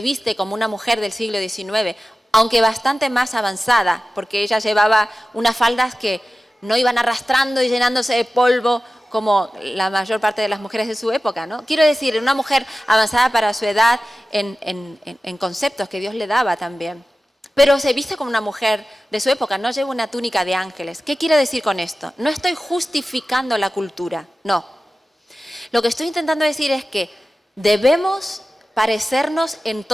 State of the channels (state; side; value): normal; both; correlation 0.94